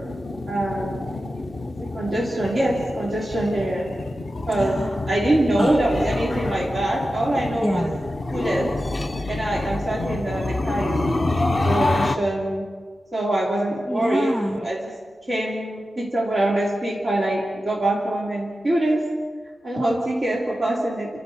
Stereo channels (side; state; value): both; normal; correlation 0.92